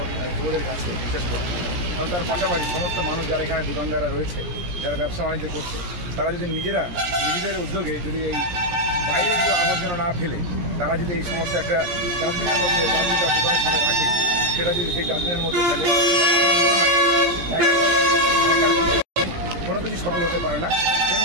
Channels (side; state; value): left; late; 17 ms